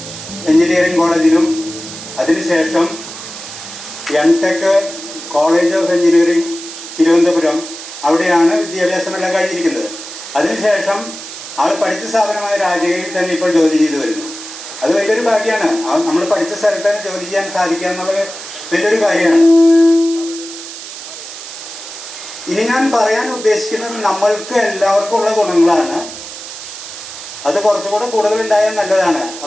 എഞ്ചിനീയറിംഗ് കോളേജിലും, അതിനുശേഷം MTech college of engineering Thiruvananthapuram, അവിടെയാണ് വിദ്യാഭ്യാസമെല്ലാം കഴിഞ്ഞിരിക്കുന്നത്. അതിനുശേഷം ആൾ പഠിച്ച സ്ഥാപനമായ രാജഗിരിയിൽ തന്നെ ഇപ്പോൾ ജോലി ചെയ്തു വരുന്നു. അത് വലിയൊരു ഭാഗ്യമാണ്. നമ്മൾ പഠിച്ച സ്ഥലത്ത് തന്നെ ജോലി ചെയ്യാൻ സാധിക്കുക എന്നുള്ളത് വലിയൊരു കാര്യമാണ്. ഇനി ഞാൻ പറയാൻ ഉദ്ദേശിക്കുന്നത് നമ്മൾക്ക് എല്ലാവർക്കും ഉള്ള ഗുണങ്ങളാണ്. അത് കുറച്ചുകൂടെ കൂടുതൽ ഉണ്ടായാൽ നല്ലതാണ്.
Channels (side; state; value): right; noise; hiss, 12 dB below the sound